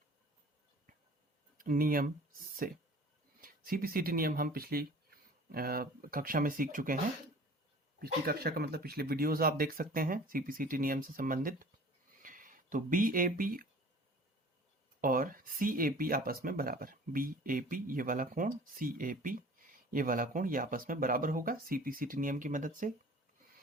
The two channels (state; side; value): normal; both; correlation 0.46